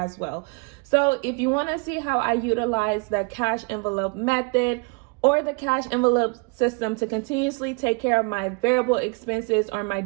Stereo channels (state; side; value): quieter; left; 32.1 dB